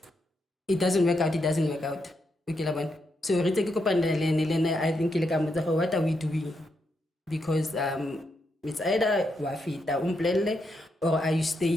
it doesn't work out, it doesn't work out. Okay, labana. So re take kopana le lena I think le ka motsa what are we doing? Because it's either wa fita umplelle or are you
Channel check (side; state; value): both; normal; correlation 0.81